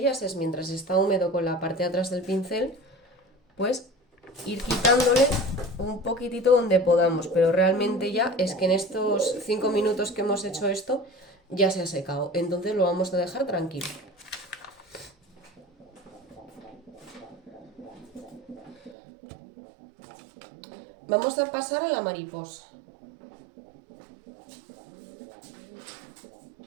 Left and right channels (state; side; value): drops out; left; at 18.9 s